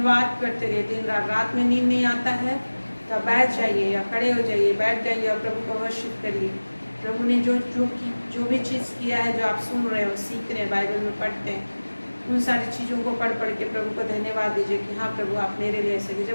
करते रहिए। दिन रात में नींद नहीं आता है तो बैठ जाइए या खड़े हो जाइए, बैठ जाइए और प्रभु को वर्शिप करिए। प्रभु ने जो भी चीज़ किया है, जो आप सुन रहे हो, सीख रहे हैं, बाइबल में पढ़ते हैं, उन सारी चीज़ों को पढ़ के प्रभु को धन्यवाद दीजिए कि हाँ प्रभु आप मेरे लिए ऐसे।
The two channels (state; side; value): inverted; both; correlation -1.00